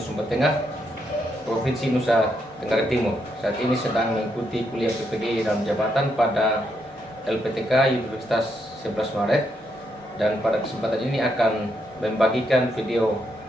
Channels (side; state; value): both; normal; correlation 0.78